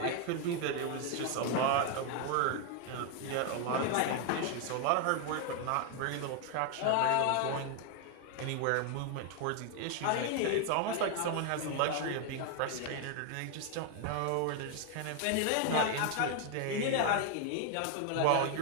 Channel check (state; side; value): different; both; correlation 0.00